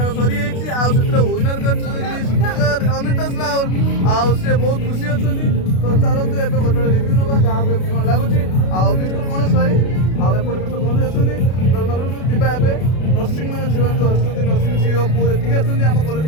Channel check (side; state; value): right; late; 32 ms